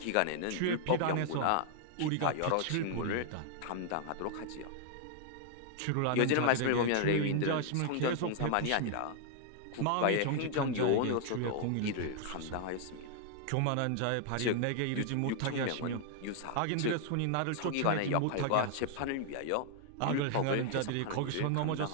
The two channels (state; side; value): different; both; correlation 0.00